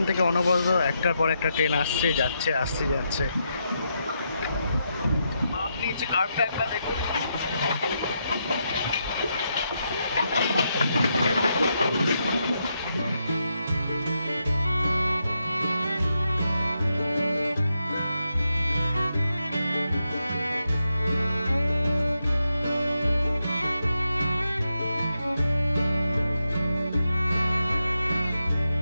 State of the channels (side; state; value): both; inverted; correlation -0.82